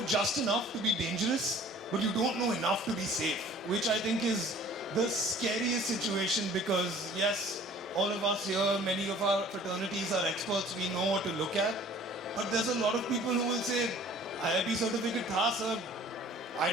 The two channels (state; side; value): normal; both; correlation 0.50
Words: just enough to be dangerous, but you don't know enough to be safe, which I think is the scariest situation because yes, all of us here, many of our fraternities are experts, we know what to look at, but there's a lot of people who will say, IIT certificate tha sir, I